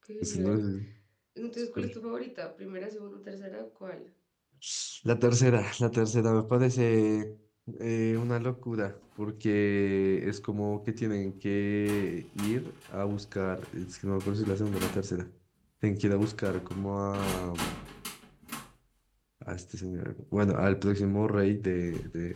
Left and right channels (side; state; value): both; identical; correlation 1.00